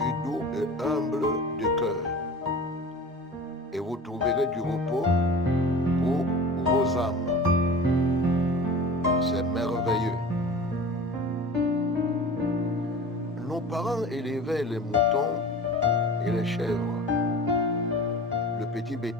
doux et humble de cœur, et vous trouverez du repos pour vos âmes. » C'est merveilleux. Nos parents élevaient les moutons et les chèvres, le petit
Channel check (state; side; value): normal; both; correlation 0.37